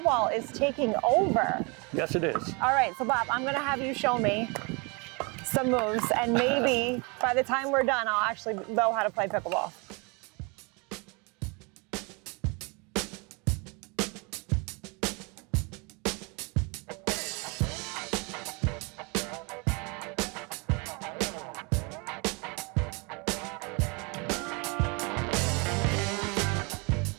is taking over. Yes, it is. All right, so Bob, I'm gonna have you show me some moves, and maybe by the time we're done, I'll actually know how to play pickleball.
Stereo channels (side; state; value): left; quieter; 30.6 dB